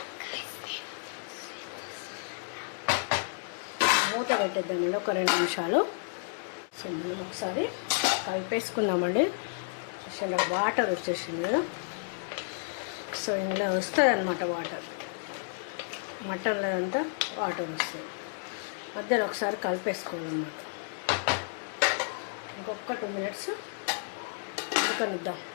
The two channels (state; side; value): silent; right; digital silence